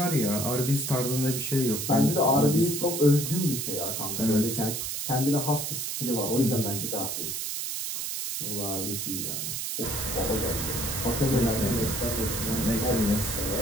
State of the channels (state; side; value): noise; right; hiss, 3 dB below the sound